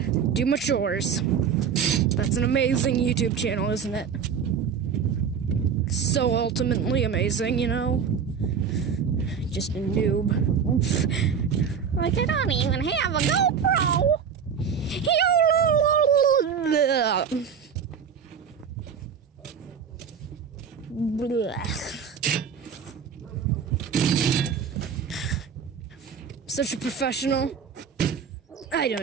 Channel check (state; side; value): quieter; left; 7.0 dB